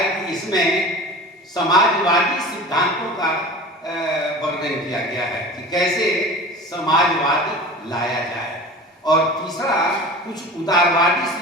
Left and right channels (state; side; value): normal; both; correlation 0.36